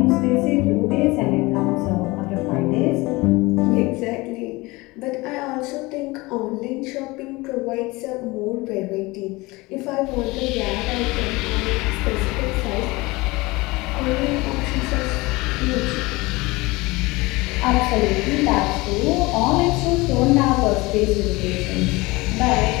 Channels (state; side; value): quieter; right; 22.5 dB